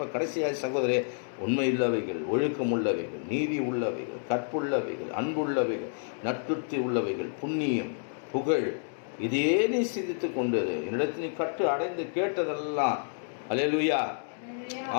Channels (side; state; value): right; silent; digital silence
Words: கடைசியாக சகோதரே, உண்மை உள்ளவைகள், ஒழுக்கம் உள்ளவைகள், நீதி உள்ளவைகள், கற்புள்ளவைகள், அன்புள்ளவைகள், நற்கிருத்தி உள்ளவைகள், புண்ணியம், புகழ், இதே நீ சிந்தித்து கொண்டு என்னிடத்தில் நீ கற்று அடைந்து கேட்டதெல்லாம், அல்லேலூயா,